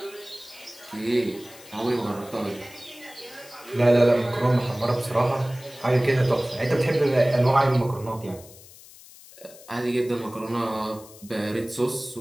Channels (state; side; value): noise; left; hiss, 20 dB below the sound